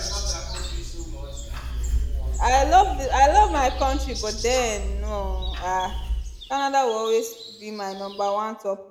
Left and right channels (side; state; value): both; identical; correlation 1.00